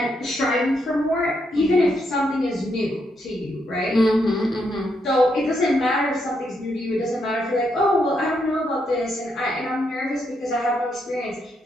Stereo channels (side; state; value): both; normal; correlation 0.79